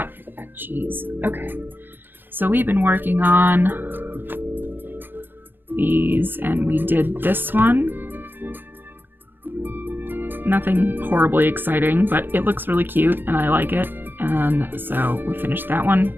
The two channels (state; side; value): late; left; 0.095 ms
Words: for that cheese. Okay. So we've been working on these, and we did this one. Nothing horribly exciting, but it looks really cute, and I like it. And so we finished that one.